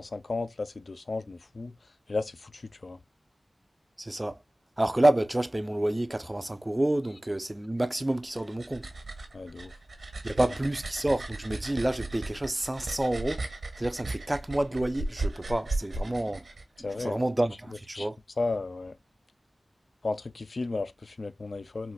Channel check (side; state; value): both; normal; correlation 0.98